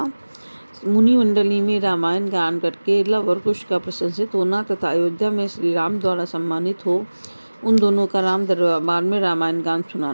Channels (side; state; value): both; inverted; correlation -1.00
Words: मुनि मंडली में रामायण गान करके लव और कुश का प्रशंसित होना तथा अयोध्या में श्री राम द्वारा सम्मानित हो उन दोनों का राम दरबार में रामायण गान